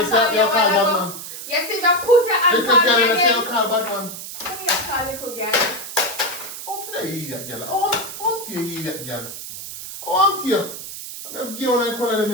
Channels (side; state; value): right; noise; hiss, 10 dB below the sound